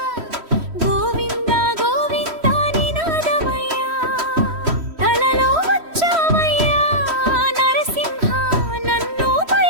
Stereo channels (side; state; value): left; late; 3.1 ms